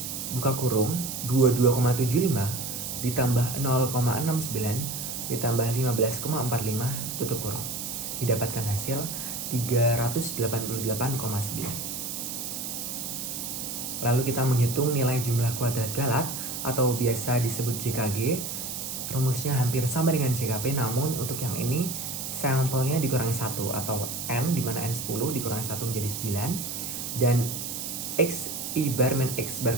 buka kurung 22,75 ditambah 0,69 ditambah 15,45 tutup kurung, didapatkan hasil 388,9. Lalu kita menghitung nilai jumlah kuadrat Galat atau biasa disebut JKG. Rumusnya hampir sama dengan JKP, namun untuk yang ini sampelnya dikurangi 1 atau N, di mana N 10 dikurangi 1 menjadi 9, dan I bar min X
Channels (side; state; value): right; noise; hiss, 5 dB below the sound